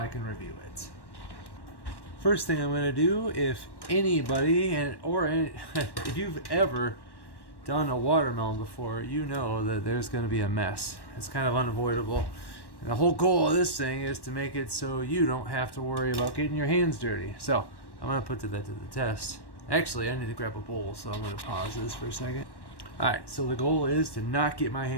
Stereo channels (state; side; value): late; right; 1.1 ms